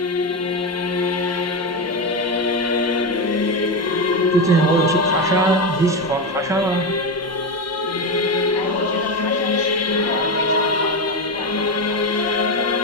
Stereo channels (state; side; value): normal; both; correlation 0.14